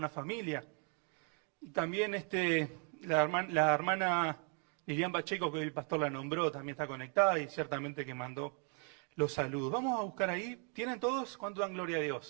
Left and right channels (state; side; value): quieter; left; 39.3 dB